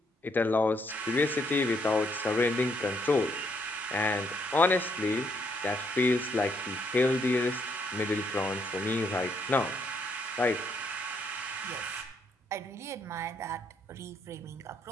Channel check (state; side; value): normal; both; correlation 0.72